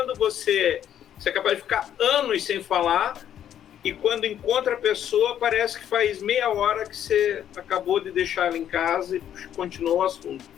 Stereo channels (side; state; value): right; quieter; 10.2 dB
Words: você é capaz de ficar anos sem falar, e quando encontra a pessoa, parece que faz meia hora que você acabou de deixar ela em casa e continuou o assunto.